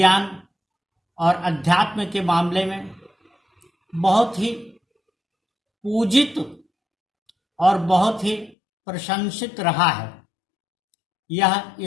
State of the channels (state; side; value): drops out; right; at 8.6 s